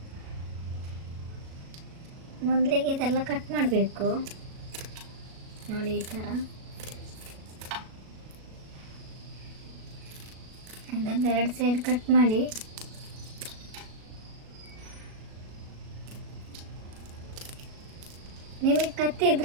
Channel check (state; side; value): late; left; 37 ms